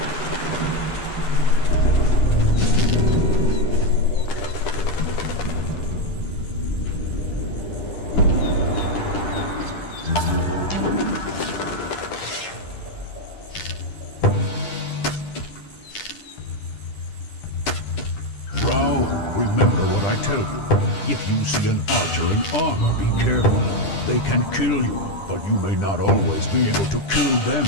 Rao, remember what I tell you. If you see an archer in armor, be careful. They can kill you, but you may not always be able to kill them,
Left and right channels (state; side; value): late; right; 10 ms